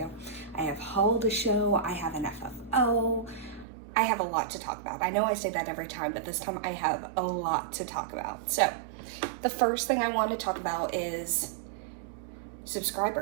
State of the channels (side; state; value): left; drops out; at 3.7 s